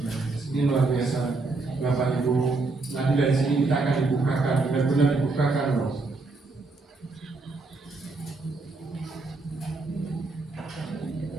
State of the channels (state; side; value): quieter; left; 3.5 dB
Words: Ini luar biasa, Bapak Ibu. Nanti dari sini kita akan dibukakan, benar-benar dibukakan loh.